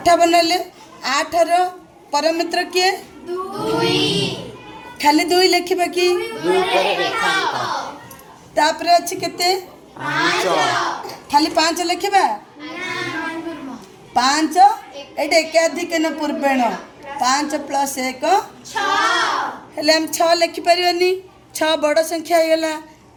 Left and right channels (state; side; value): identical; both; correlation 1.00